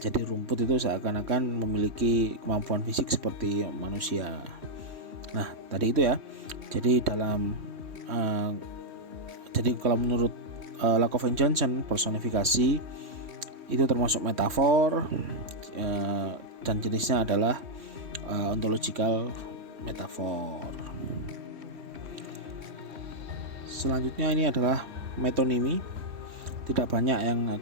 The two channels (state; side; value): late; left; 3.1 ms